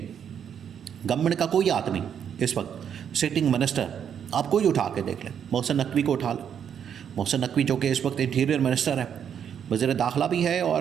गवर्नमेंट का कोई हाथ नहीं इस वक्त। सिटिंग मिनिस्टर आप कोई उठा के देख लें, मोहसिन नकवी को उठा लें। मोहसिन नकवी जो कि इस वक्त इंटीरियर मिनिस्टर है, वज़ीर दाखिला भी है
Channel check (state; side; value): quieter; left; 8.4 dB